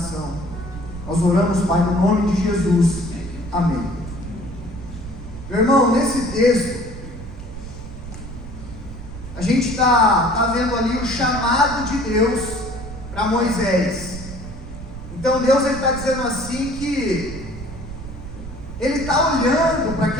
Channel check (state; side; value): noise; right; rumble, 11 dB below the sound